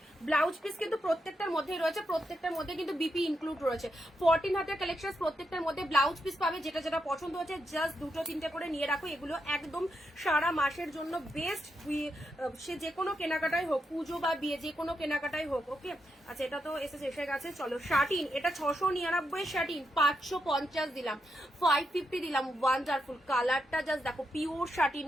ব্লাউজ পিস কিন্তু প্রত্যেকটার মধ্যেই রয়েছে, প্রত্যেকটার মধ্যে কিন্তু বিপি ইনক্লুড রয়েছে। 14 হাতের কালেকশন, প্রত্যেকটার মধ্যে ব্লাউজ পিস পাবে, যেটা যেটা পছন্দ হচ্ছে জাস্ট দুটো তিনটে করে নিয়ে রাখো। এগুলো একদম সারা মাসের জন্য বেস্ট, সে যে কোনো কেনাকাটাই হোক, পুজো বা বিয়ে যে কোনো কেনাকাটাই হোক। ওকে আচ্ছা এটা তো এসে গেছে। চলো শার্টিন, এটা 699 শার্টিন, 550 দিলাম, 550 দিলাম। ওয়ান্ডারফুল কালারটা জাস্ট দেখো, pure satin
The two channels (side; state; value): both; normal; correlation 0.83